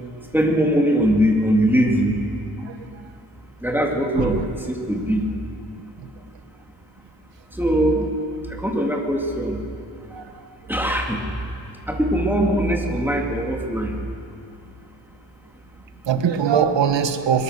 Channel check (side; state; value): both; normal; correlation 0.57